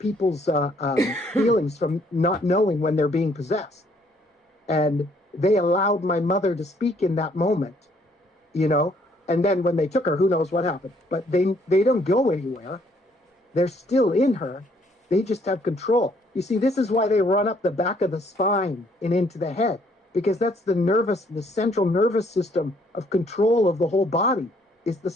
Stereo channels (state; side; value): normal; both; correlation 0.65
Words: feelings from not knowing when they're being possessed. And they allowed my mother to speak in that moment, and then when they took her, who knows what happened. But they don't go anywhere. They're still in her. They just have control. You see, this is why they run up the back of the spine and into the head, because that's the central nervous system of control of the whole body is the